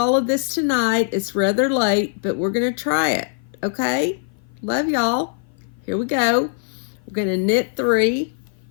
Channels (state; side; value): silent; right; 55 dB below the other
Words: of this tonight. It's rather late, but we're going to try it. Okay? Love y'all. Here we go. We're going to knit 3.